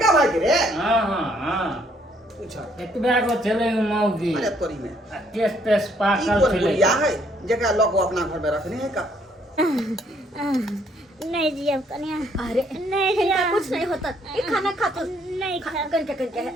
भाई के रे। हां पूछो एतबा गो चले मौगी अरे तोरी में केस तेस ई पाकल कोन चले। बुढ़िया है जेकरा लोग अपना घर में रखने है का? नहीं जियब कनिया। अरे नहीं इनका जिया कुछ नहीं होता। ये खाना खा तो नहीं खा करके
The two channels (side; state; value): both; normal; correlation 0.67